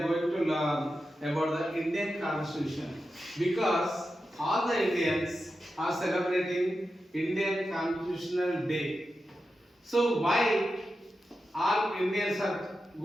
going to learn about the Indian Constitution because all the Indians are celebrating Indian Constitutional Day. So why all Indians are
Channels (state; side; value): normal; both; correlation 0.90